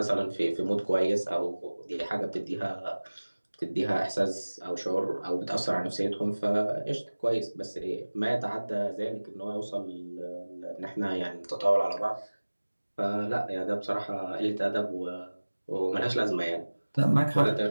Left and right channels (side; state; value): both; inverted; correlation -1.00